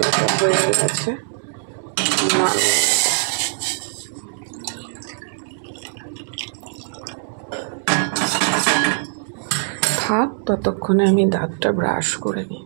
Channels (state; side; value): silent; left; 65 dB below the other